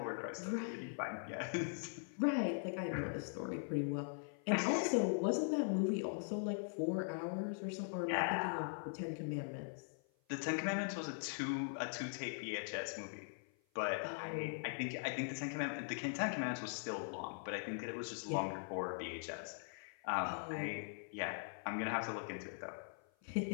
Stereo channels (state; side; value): silent; right; 50 dB below the other